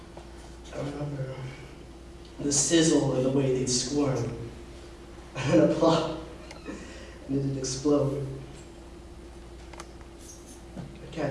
I remember the sizzle and the way they'd squirm. And then a plop, and it'd explode. I'd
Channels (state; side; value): identical; both; correlation 1.00